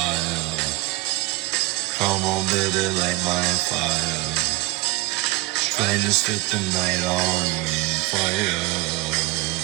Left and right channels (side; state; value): left; quieter; 21.9 dB